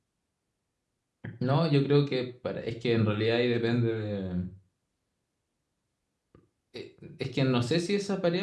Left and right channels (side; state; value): both; identical; correlation 1.00